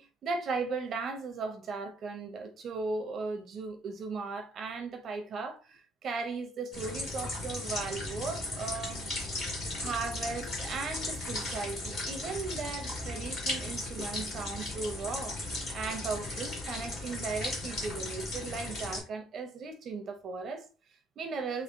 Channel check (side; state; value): both; normal; correlation 0.64